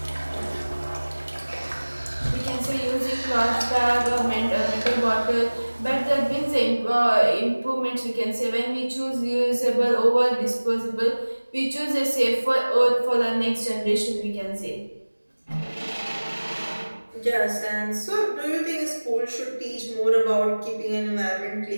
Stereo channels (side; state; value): both; inverted; correlation -1.00